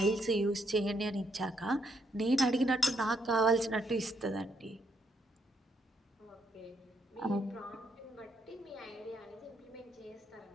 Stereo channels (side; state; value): both; normal; correlation 0.74